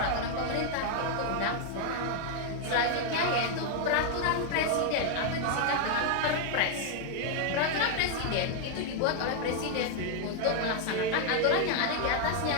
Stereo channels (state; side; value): different; both; correlation 0.00